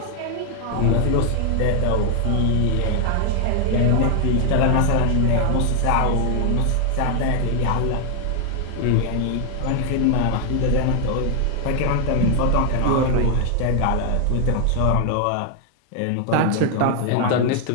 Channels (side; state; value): both; different; correlation 0.00